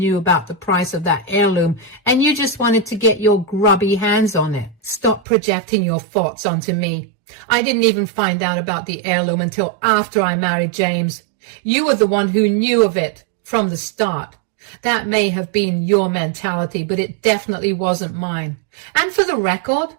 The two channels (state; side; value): drops out; left; at 5.2 s